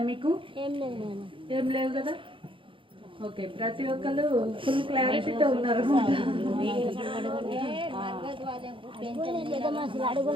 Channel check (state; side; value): late; left; 0.25 ms